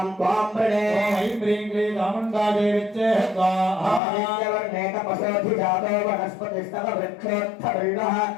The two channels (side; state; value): right; drops out; at 4.0 s